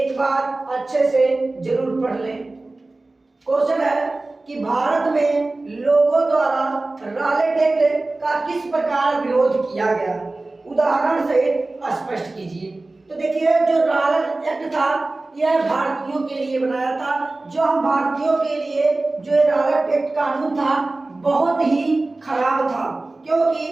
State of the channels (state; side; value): quieter; left; 3.1 dB